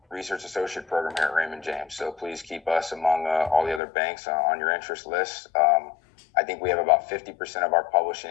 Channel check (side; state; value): right; drops out; at 3.8 s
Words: research associate program here at Raymond James. So please keep us among all the other banks on your interest list. I think we have about 50% of our publishing